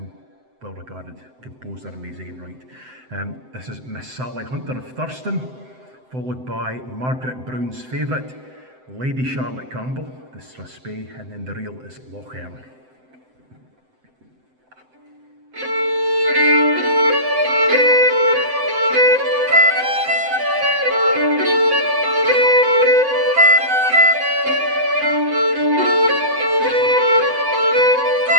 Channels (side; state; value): left; late; 7.8 ms